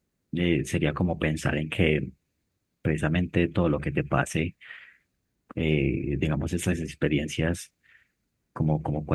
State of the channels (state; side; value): identical; both; correlation 1.00